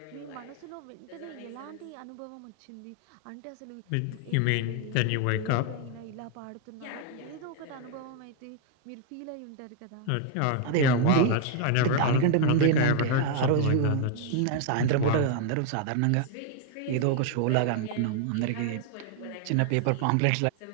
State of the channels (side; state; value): both; different; correlation 0.00